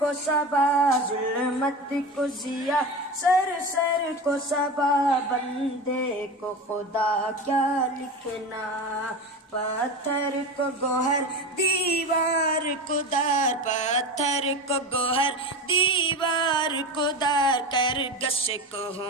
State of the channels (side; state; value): both; normal; correlation 0.26